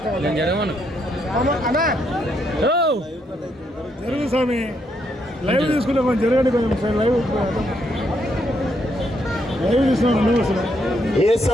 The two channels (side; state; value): both; normal; correlation 0.76